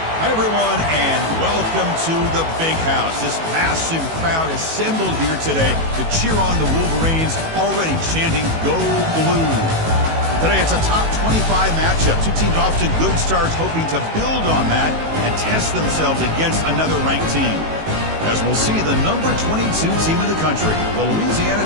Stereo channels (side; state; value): left; late; 18 ms